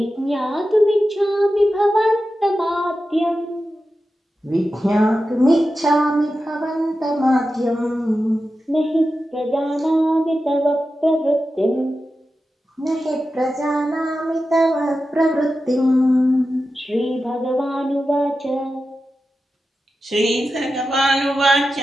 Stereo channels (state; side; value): normal; both; correlation 0.92